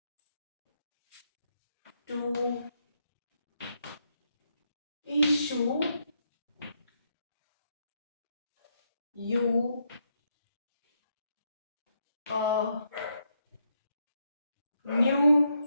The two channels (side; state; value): both; inverted; correlation -0.78